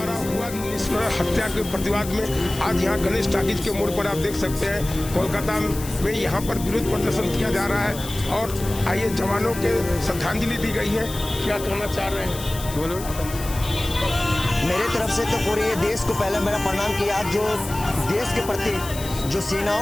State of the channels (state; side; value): noise; left; hiss, 12 dB below the sound